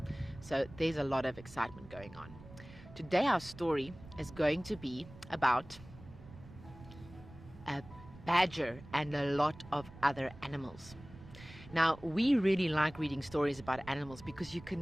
So there's a lot of excitement going on. Today our story is going to be about a badger and a lot of other animals. Now, we really like reading stories about animals because you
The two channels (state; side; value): noise; right; rumble, 18 dB below the sound